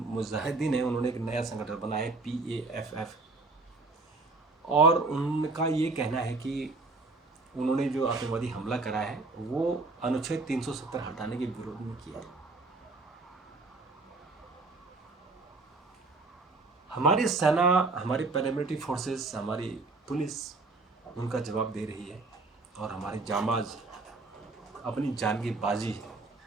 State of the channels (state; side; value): quieter; left; 3.5 dB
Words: है, उन्होंने एक नया संगठन बनाया है PAFF। और उनका ये कहना है कि उन्होंने जो आतंकवादी हमला करा है वो अनुच्छेद 370 हटाने के विरोध में किया है। हमारी सेना, हमारी पैरामिलिट्री फोर्सेस, हमारी पुलिस उनका जवाब दे रही है और हमारे जांबाज अपनी जान की बाजी